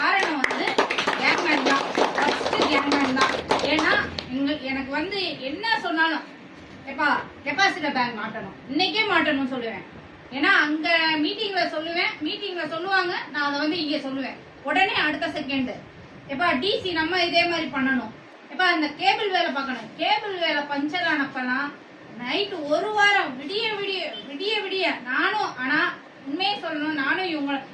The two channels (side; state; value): both; identical; correlation 1.00